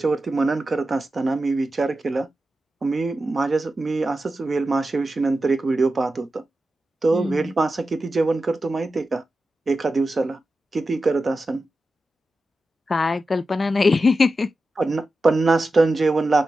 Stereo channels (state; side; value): normal; both; correlation 0.92